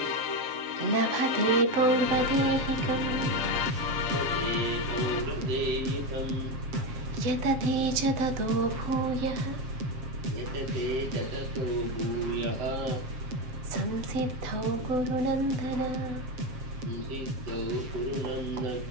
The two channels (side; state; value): left; late; 7.9 ms